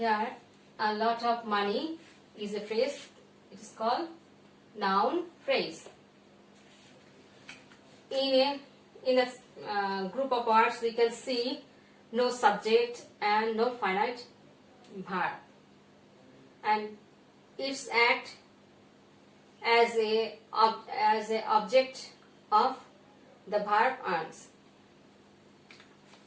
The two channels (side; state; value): both; identical; correlation 1.00